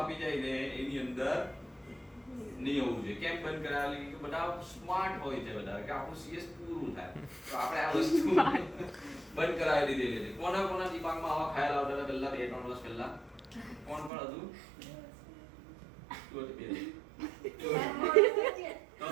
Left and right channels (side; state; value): left; drops out; at 14.1 s